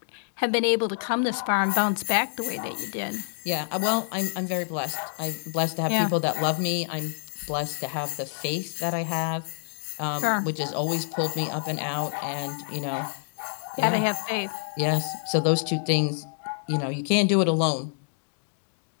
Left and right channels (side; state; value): right; silent; digital silence